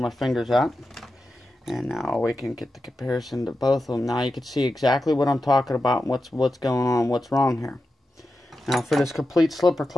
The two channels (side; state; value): both; normal; correlation 0.91